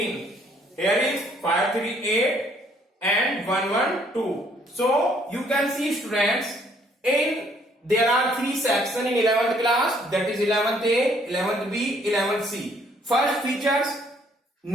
Here is 5, 3, 8 and 1, 1, 2. So you can see students, there are three sections in 11th class, that is 11th A, 11th B, 11th C. First features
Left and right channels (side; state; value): both; normal; correlation 0.64